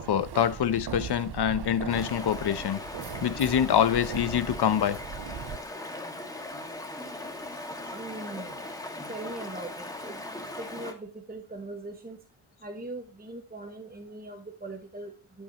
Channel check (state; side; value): quieter; right; 6.5 dB